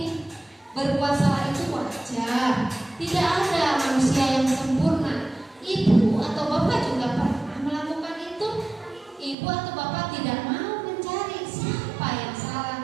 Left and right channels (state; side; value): drops out; left; at 9.3 s